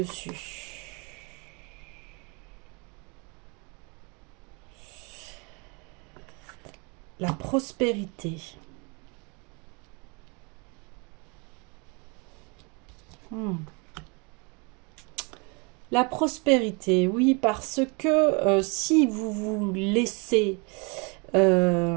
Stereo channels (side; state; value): left; quieter; 31.5 dB